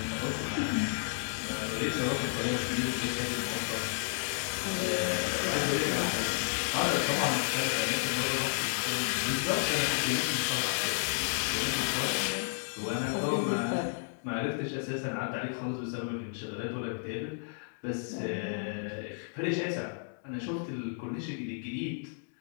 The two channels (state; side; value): silent; right; digital silence